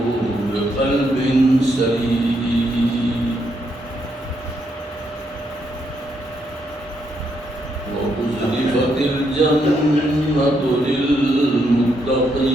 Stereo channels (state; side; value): normal; both; correlation 0.77